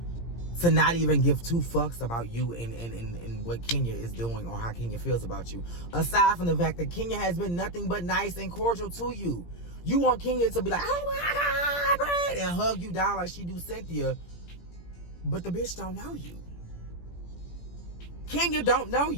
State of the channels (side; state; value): right; late; 17 ms